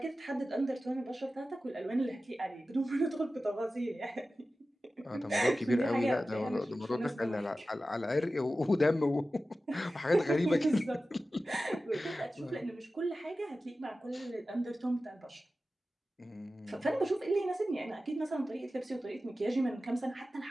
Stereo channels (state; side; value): normal; both; correlation 0.94